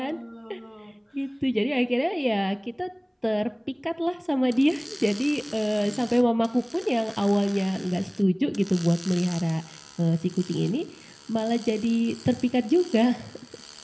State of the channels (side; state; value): both; identical; correlation 1.00